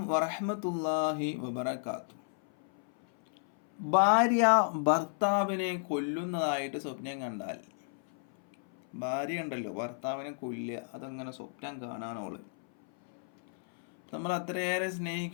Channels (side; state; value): right; silent; 56 dB below the other